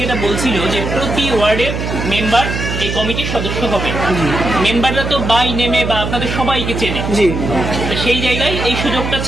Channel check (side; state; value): right; noise; hum, 4 dB below the sound